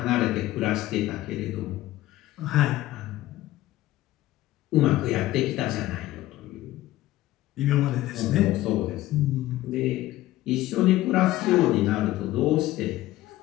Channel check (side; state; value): right; quieter; 15.9 dB